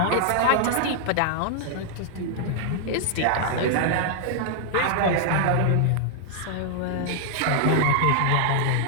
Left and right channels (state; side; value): different; both; correlation -0.01